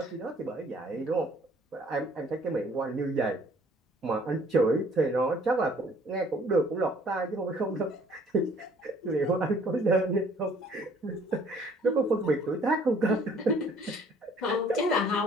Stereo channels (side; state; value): both; normal; correlation 0.58